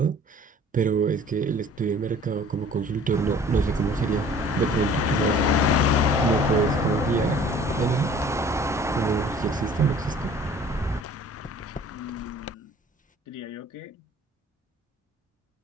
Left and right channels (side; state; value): both; normal; correlation 0.50